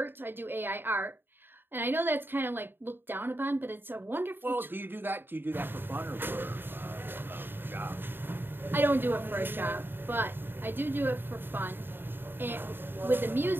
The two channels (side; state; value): left; late; 0.098 ms